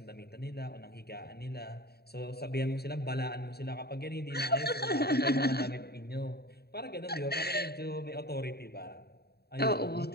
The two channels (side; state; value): right; late; 0.47 ms